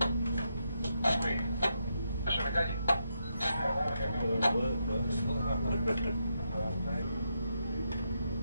Ακούει. Δεν σου με κάνει.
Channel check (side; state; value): both; inverted; correlation -0.82